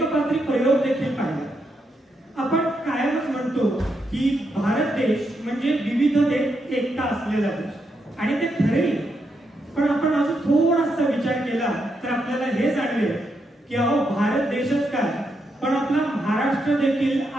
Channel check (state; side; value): normal; both; correlation 0.81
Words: प्रयोग देखील पाहिला. आपण कायमच म्हणतो की भारत देश म्हणजे विविधतेत एकता असलेला देश, आणि ते खरे. पण आपण अजून थोडासा विचार केला तर आपल्याला हे जाणवेल की अहो, भारत देशच काय, पण आपला महाराष्ट्र देखील